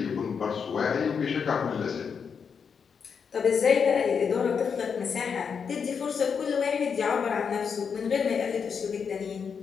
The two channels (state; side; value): quieter; right; 6.4 dB